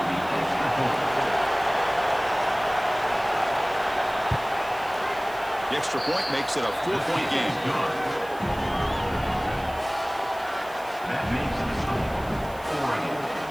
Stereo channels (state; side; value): noise; right; hiss, 22 dB below the sound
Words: The extra point makes it a 4-point game. That makes the score. Oregon